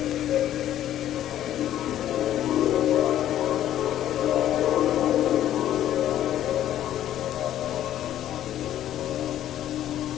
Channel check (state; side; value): quieter; right; 12.0 dB